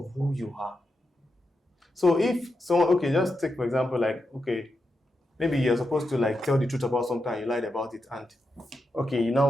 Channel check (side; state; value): both; normal; correlation 0.87